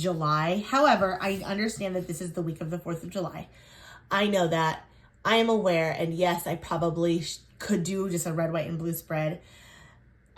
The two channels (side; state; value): both; identical; correlation 1.00